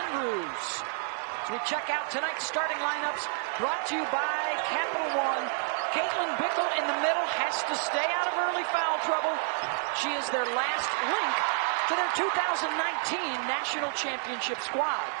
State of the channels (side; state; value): left; silent; 58 dB below the other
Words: As we check out tonight's starting lineups, brought to you by Capital One. Caitlin Bickle in the middle has to stay out of early foul trouble. She is their last link to their 2019 National Championship squad.